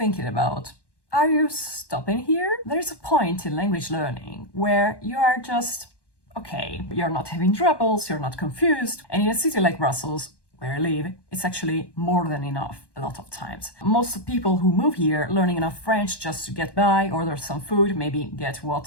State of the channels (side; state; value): right; late; 1.1 ms